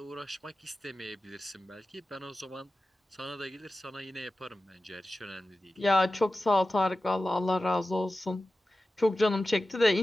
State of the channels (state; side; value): normal; both; correlation 0.94